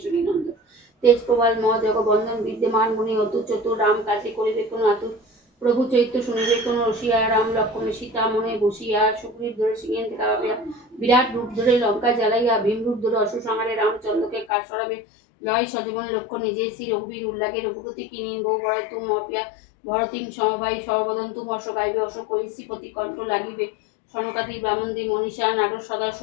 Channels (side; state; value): right; drops out; at 14.5 s